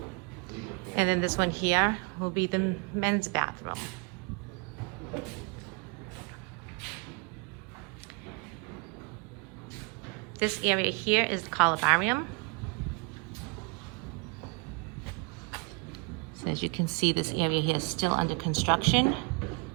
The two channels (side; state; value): left; quieter; 30.9 dB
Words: And then this one here will be the men's bathroom. This area here is the columbarium. So as you can see, this area here is still under construction.